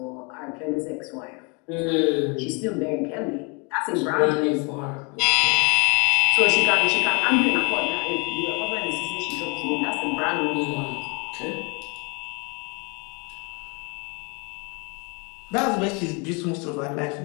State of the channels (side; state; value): right; quieter; 32.0 dB